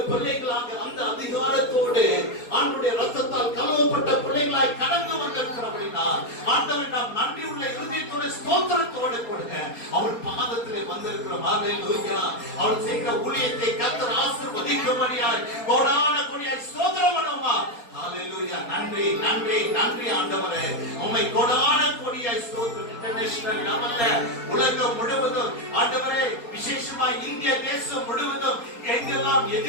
பிள்ளைகளாக அந்த அதிகாரத்தோடு ஆண்டவருடைய ரத்தத்தால் கழுவப்பட்ட பிள்ளைகளாய் கடந்து வந்திருக்கிறவர்களா ஆண்டவன் நாம் நன்றி உள்ள இருதயத்தோடு ஸ்தோத்திரத்தோடு கொடுங்க அவர் பாதத்தில் வந்திருக்கிறோம். ஹalleluya. அவர் செய்கிற ஊழியத்தை கர்த்தர் ஆசீர்வதிக்கும்படியாய் கோடான கோடியாய் ஸ்தோத்திரம் பண்ணுவோமா? ஹalleluya. நன்றி நன்றி நன்றி ஆண்டவரே, உம்மை கோடான கோடியாய் ஸ்தோத்திரம். இன்டர்நேஷனல் லெவல்ல உலகம் முழுவதும் ஆண்டவரே, விசேஷமா இந்திய தேசம் முழுவதும் எங்கெல்லாம்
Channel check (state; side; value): late; right; 4.2 ms